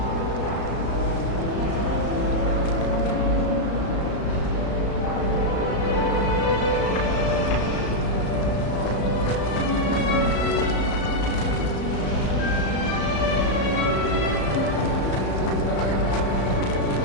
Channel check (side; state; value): right; late; 34 ms